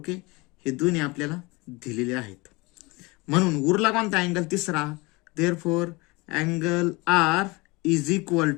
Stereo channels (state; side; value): quieter; right; 24.9 dB